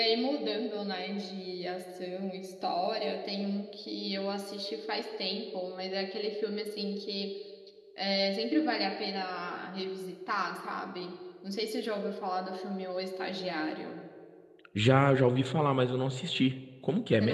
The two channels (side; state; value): both; identical; correlation 1.00